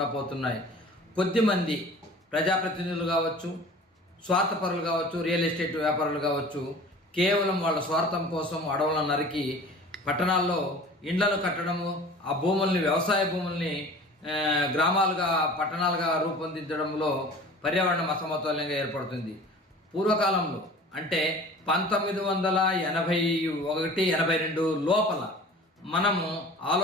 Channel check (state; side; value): normal; both; correlation 0.43